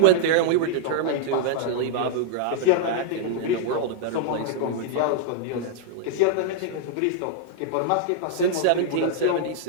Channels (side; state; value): both; different; correlation -0.01